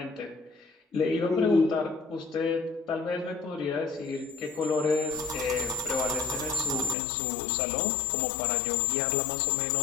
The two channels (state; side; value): drops out; right; at 7.0 s